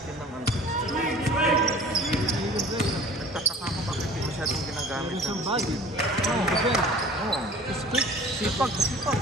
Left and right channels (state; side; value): normal; both; correlation 0.45